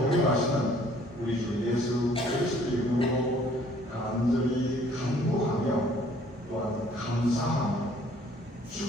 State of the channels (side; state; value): both; normal; correlation 0.58